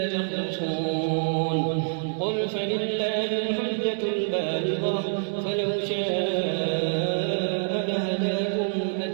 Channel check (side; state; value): left; silent; digital silence